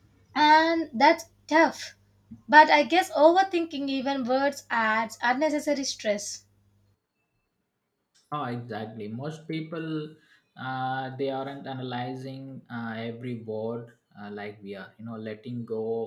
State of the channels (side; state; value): both; identical; correlation 1.00